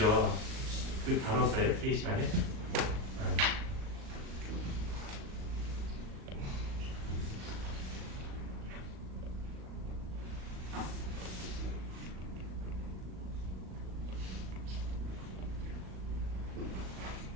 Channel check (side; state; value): left; late; 38 ms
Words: 그 다뤘어요, TA 시간에.